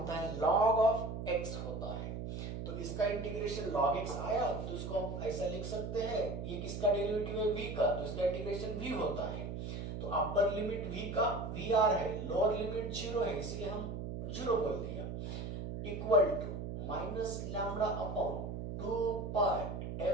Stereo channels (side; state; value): right; noise; hum, 5 dB below the sound